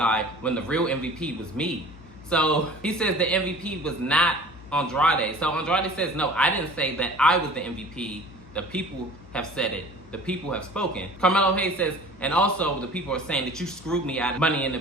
when the real MVP was me. So he says the MVP was not Andrade. So Andrade says, no, I didn't say that I was the MVP. The people have said it. The people have spoken. Carmelo Hayes says, and also the people are saying that you screwed me out of Money in the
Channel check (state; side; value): noise; left; hum, 20 dB below the sound